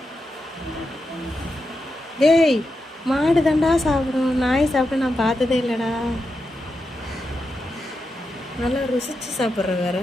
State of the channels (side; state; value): both; normal; correlation 0.87